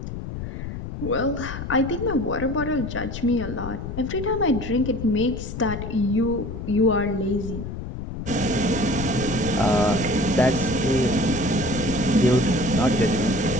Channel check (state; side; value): noise; left; rumble, 7 dB below the sound